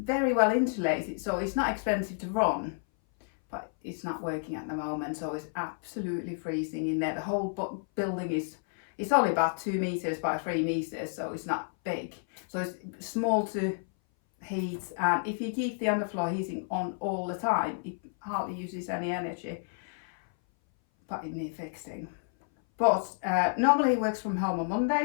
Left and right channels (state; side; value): silent; right; 58 dB below the other